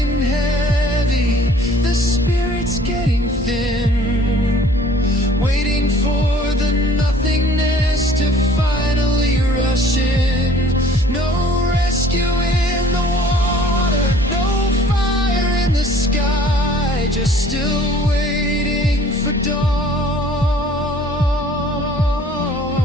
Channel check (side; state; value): both; normal; correlation 0.53